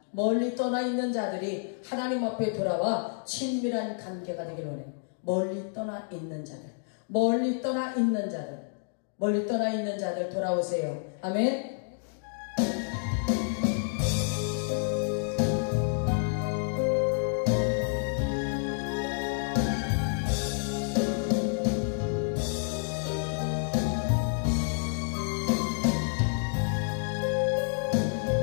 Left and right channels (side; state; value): right; silent; digital silence